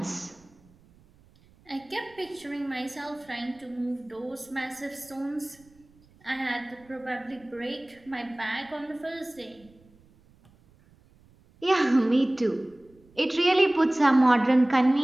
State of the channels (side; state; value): right; noise; rumble, 29 dB below the sound